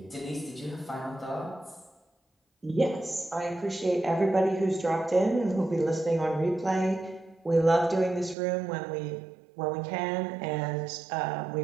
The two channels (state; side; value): drops out; left; at 8.3 s